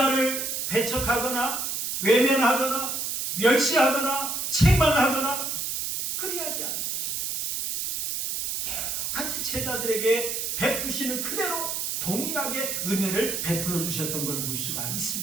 배척하거나 외면하거나 멸시하거나 책망하거나 그리하지 않으셨어요. 같이 제자들에게 베푸시는 그대로 동일하게 은혜를 베풀어 주셨던 걸 볼 수가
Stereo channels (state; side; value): noise; right; hiss, 2 dB below the sound